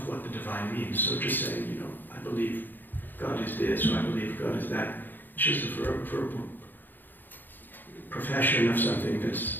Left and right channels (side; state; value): right; late; 0.090 ms